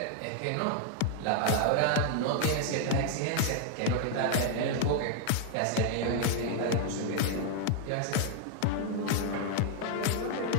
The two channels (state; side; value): different; both; correlation 0.00